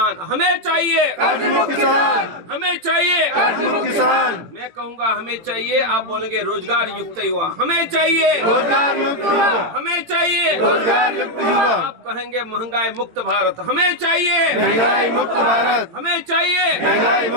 हमें चाहिए कर्ज मुक्त किसान, हमें चाहिए कर्ज मुक्त किसान। मैं कहूँगा हमें चाहिए, आप बोलेंगे रोजगार युक्त युवा, हमें चाहिए रोजगार युक्त युवा, हमें चाहिए रोजगार युक्त युवा। आप कहेंगे महंगाई मुक्त भारत, हमें चाहिए महंगाई मुक्त भारत, हमें चाहिए महंगाई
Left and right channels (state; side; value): late; left; 18 ms